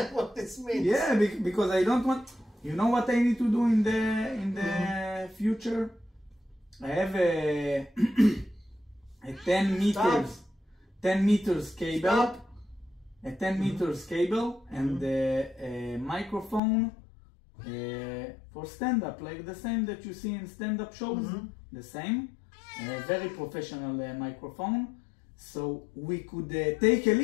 what this means. Yeah, because I don't want. You know what I need to do in the future? I have a 10 meters. 10 meters cable, a 10 meters cable, and a microphone for stand-up, like the same that you see in stand-up shows, the same, a very professional microphone, so we could take a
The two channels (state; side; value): drops out; right; at 16.6 s